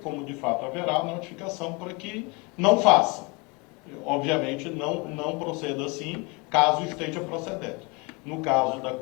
como de fato haverá, notificação para que não faça. Obviamente não proceda assim, caso esteja procedendo. No caso da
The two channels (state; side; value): quieter; right; 28.8 dB